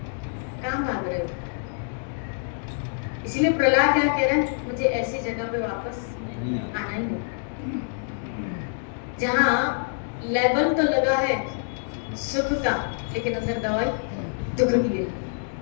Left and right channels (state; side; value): silent; right; digital silence